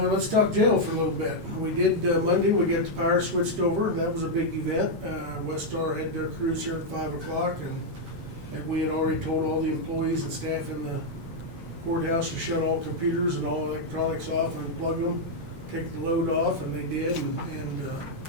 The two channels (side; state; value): left; late; 8.5 ms